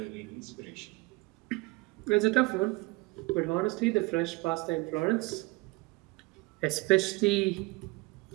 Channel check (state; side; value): quieter; left; 23.8 dB